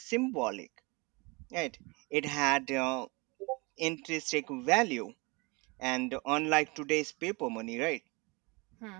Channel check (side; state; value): left; quieter; 27.4 dB